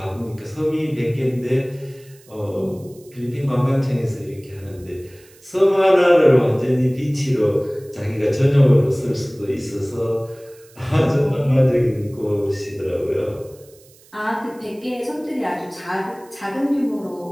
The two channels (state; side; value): noise; right; hiss, 27 dB below the sound